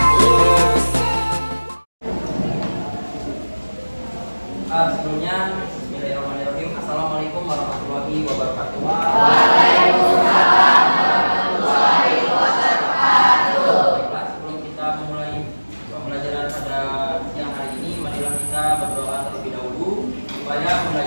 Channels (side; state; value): both; inverted; correlation -1.00